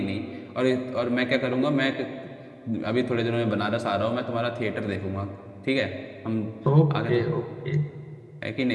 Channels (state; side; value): identical; both; correlation 1.00